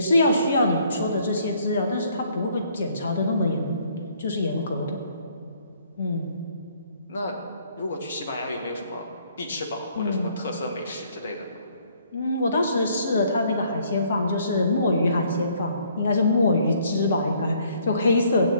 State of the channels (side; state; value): both; inverted; correlation -0.64